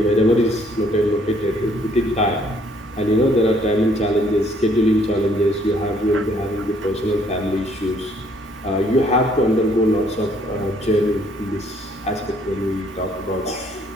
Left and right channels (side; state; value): both; normal; correlation 0.64